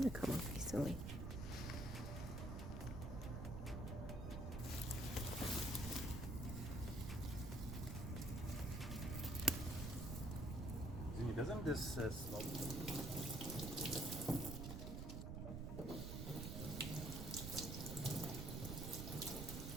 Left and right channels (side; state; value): right; noise; rumble, 4 dB below the sound